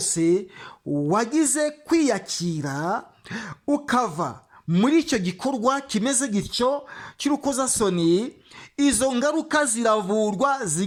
wagize kwiyakira ukava muri icyo gikorwa kimeze gityo cy'urukozasoni, izo ngaruka ziravurwa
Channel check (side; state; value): both; identical; correlation 1.00